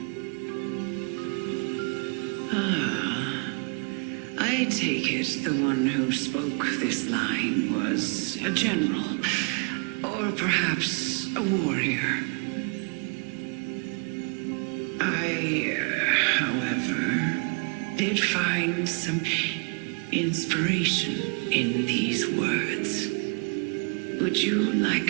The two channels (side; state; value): left; quieter; 36.7 dB